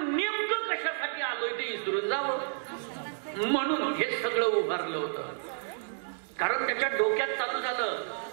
नेमकं कशासाठी आलोय ते विसरून जावं, म्हणून हे सगळं उभारलं होतं. कारण त्याच्या डोक्यात चालू झालं,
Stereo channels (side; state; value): left; silent; digital silence